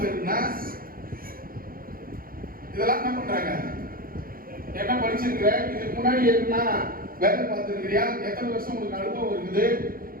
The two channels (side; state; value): left; late; 0.42 ms